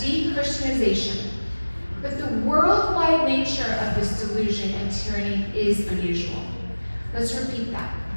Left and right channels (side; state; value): both; inverted; correlation -1.00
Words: de-Christianization. But the worldwide nature of this delusion and tyranny is unusual. Let's repeat that.